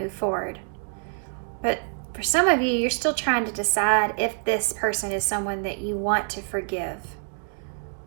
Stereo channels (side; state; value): left; silent; 61 dB below the other